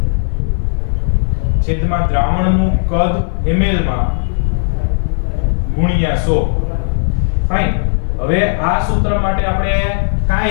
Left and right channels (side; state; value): right; silent; digital silence